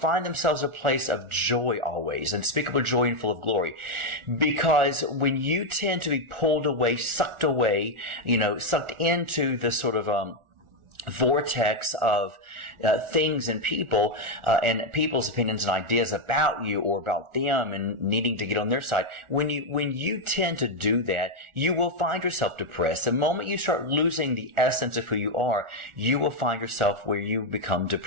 themselves at a place of joy always, unspeakable joy and full of glory. Because when you tend to be pulled away, sucked into the sort of, vortex of things and people and people's opinions and ideas about you or about them and needing to get on their side. When you tend to do that, you will find yourself depressed. The moment you start losing the essence of who you are, you will find yourself where you become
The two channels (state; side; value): late; left; 1.4 ms